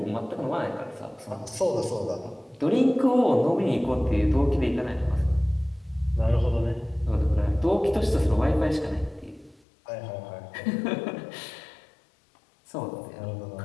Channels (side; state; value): right; drops out; at 9.6 s